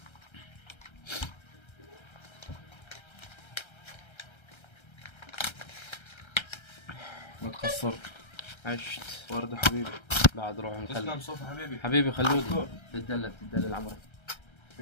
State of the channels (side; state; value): right; late; 1.3 ms